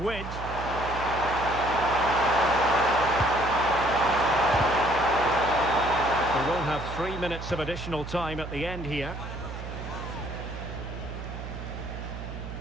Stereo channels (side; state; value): right; noise; hum, 9 dB below the sound